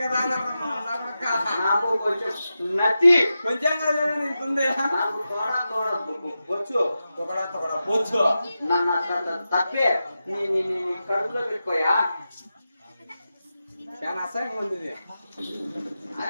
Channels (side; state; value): both; inverted; correlation -0.91